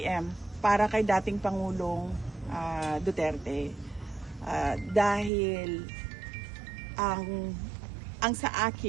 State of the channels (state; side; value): drops out; left; at 5.3 s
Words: para kay dating Pangulong Duterte. Dahil ang sa